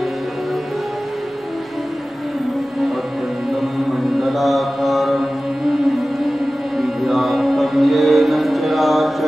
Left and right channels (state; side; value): normal; both; correlation 0.96